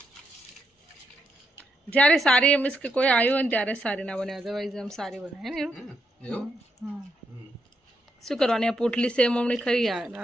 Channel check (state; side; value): normal; both; correlation 0.80